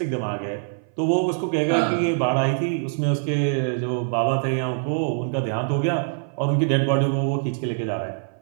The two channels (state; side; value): silent; left; 57 dB below the other